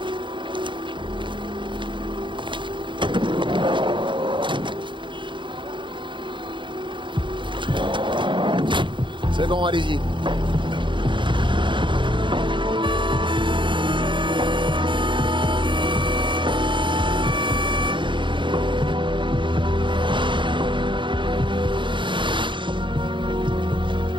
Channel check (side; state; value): left; late; 0.23 ms